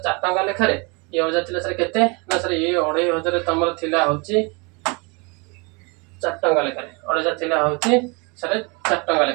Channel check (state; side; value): quieter; left; 29.8 dB